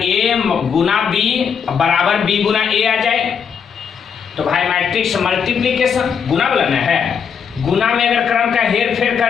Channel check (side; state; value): right; quieter; 6.9 dB